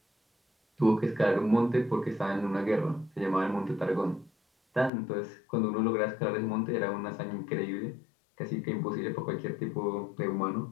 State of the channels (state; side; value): drops out; right; at 4.9 s